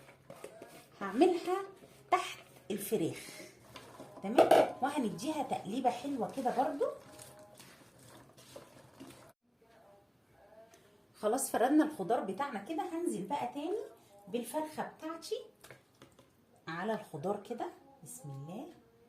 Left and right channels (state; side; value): identical; both; correlation 1.00